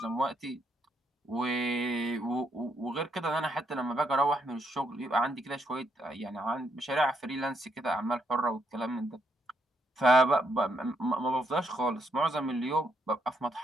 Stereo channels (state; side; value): normal; both; correlation 0.76